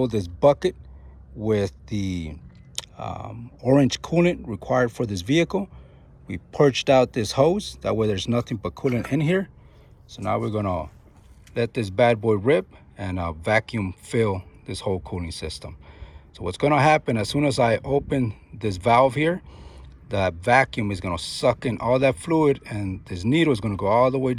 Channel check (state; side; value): identical; both; correlation 1.00